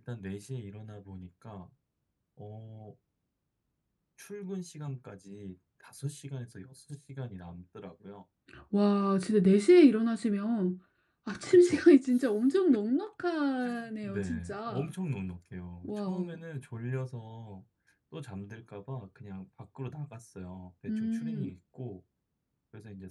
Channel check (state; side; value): identical; both; correlation 1.00